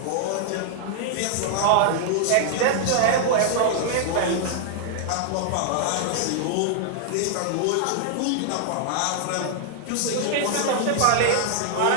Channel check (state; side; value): different; both; correlation -0.01